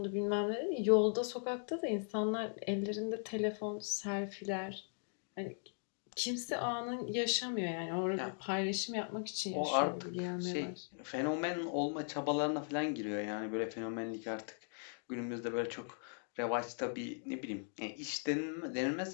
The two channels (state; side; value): silent; right; 52 dB below the other